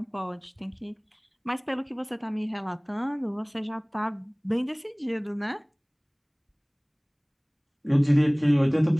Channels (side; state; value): both; identical; correlation 1.00